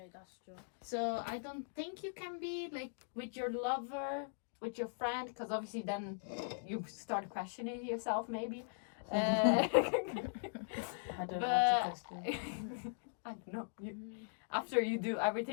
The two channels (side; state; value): right; silent; digital silence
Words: that's true. So I don't think you can be like with your lover, with your friend, because obviously then you start questioning yourself maybe. I don't know how to explain. I don't know. After you do